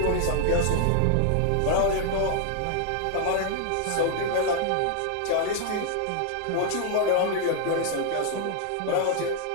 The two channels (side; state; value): both; different; correlation 0.00